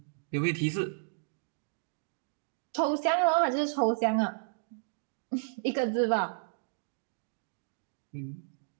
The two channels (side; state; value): left; silent; digital silence